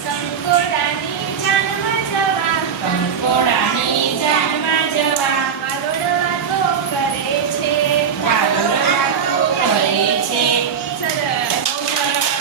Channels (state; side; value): quieter; left; 7.1 dB